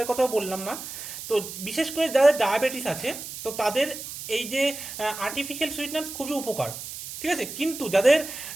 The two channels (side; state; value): right; noise; hiss, 10 dB below the sound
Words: কথাও বললাম না, তো বিশেষ করে যাদের ডায়াবেটিস আছে তো তাদের এই যে আর্টিফিশিয়াল সুইটনার্স খুবই উপকার। ঠিক আছে, কিন্তু যাদের